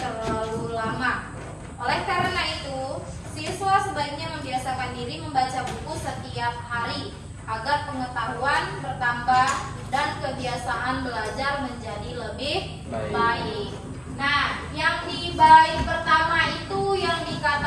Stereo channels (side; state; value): both; identical; correlation 1.00